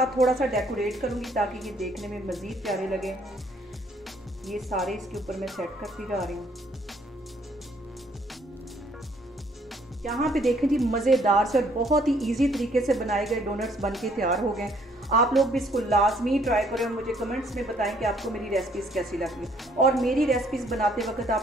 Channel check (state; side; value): normal; both; correlation 0.64